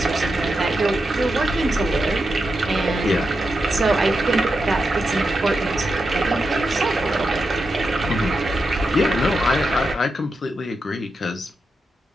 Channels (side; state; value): both; normal; correlation 0.87